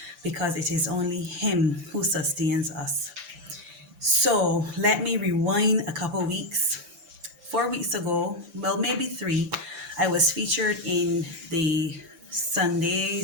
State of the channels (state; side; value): late; left; 5.9 ms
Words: because it is only Him who sustains us. So let me rewind a couple weeks. 4 weeks ago, well, maybe three, I was featured in the Sunday